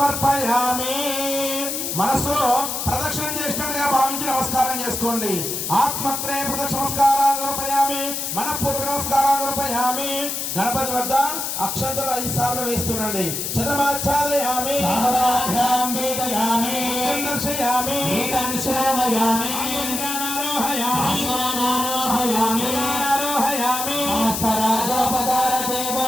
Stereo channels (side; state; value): left; noise; hiss, 3 dB below the sound